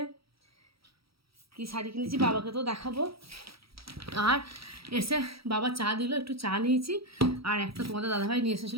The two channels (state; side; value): late; left; 0.76 ms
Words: কি শাড়ি কিনেছি, বাবাকে তো দেখাবো। আর এসে বাবা চা দিল, একটু চা নিয়েছি। আর একটা তোমাদের দাদাভাই নিয়ে